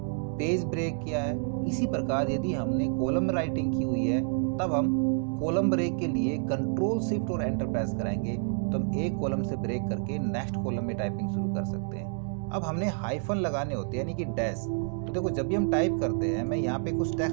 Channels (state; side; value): silent; left; 56 dB below the other